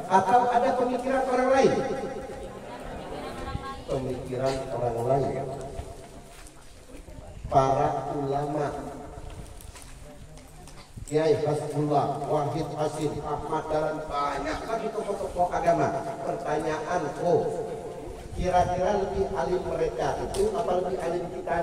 atau ada pemikiran orang lain? Pemikiran orang lain. Para ulama, Kiai Hasbullah, Wahid Hasim, Ahmad Dahlan, banyak lagi tokoh-tokoh agama. Pertanyaanku, kira-kira lebih alim mereka itu apa lebih alim kita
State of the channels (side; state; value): both; identical; correlation 1.00